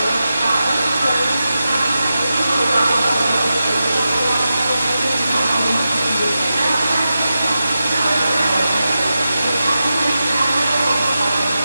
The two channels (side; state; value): both; inverted; correlation -0.91